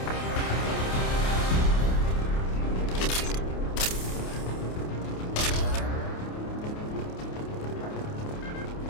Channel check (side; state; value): right; late; 28 ms